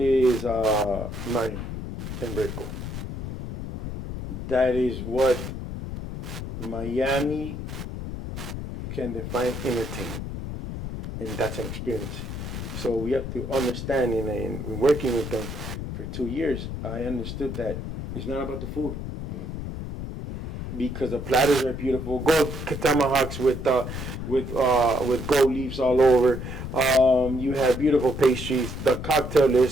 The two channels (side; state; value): left; noise; rumble, 7 dB below the sound